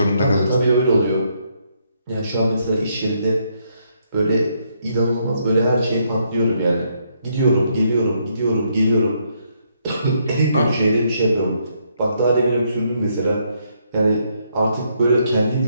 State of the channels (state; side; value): inverted; both; correlation -0.74